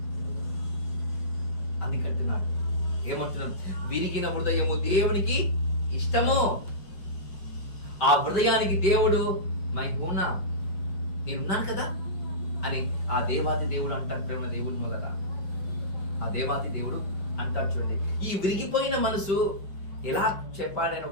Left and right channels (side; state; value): right; late; 5.2 ms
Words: అందుకంటున్నాను, ఏమంటున్నాను? విరిగిన హృదయము దేవునికి ఇష్టము. ఆ హృదయానికి దేవుడు మైహూనా, నేనున్నాను కదా అని ఆ దేవాది దేవుడు అంటాడు ప్రేమ దేవుని వల్ల. ఆ దేవాది దేవుడు అంటాడు. చూడండి, ఈ విరిగిపోయిన మనసు ఎలా చెప్పాలని